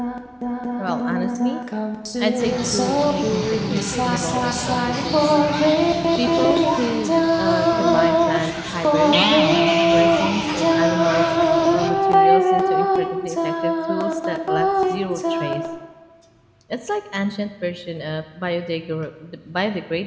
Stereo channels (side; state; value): both; identical; correlation 1.00